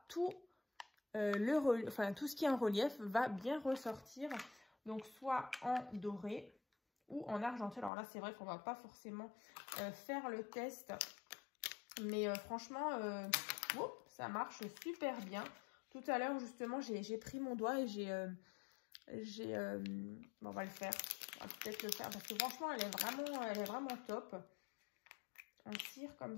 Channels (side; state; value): right; drops out; at 7.9 s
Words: tout, tout ce qui est en relief va bien ressortir. Donc, soit en doré ou en argenté. Alors là, c'est vrai qu'on ne va pas forcément faire le test. Mais franchement, ça marche super bien. Tout à l'heure, justement, j'ai pris mon doigt et on va le faire. On va peut-être le faire parce que franchement, elle est vraiment top. En cire comme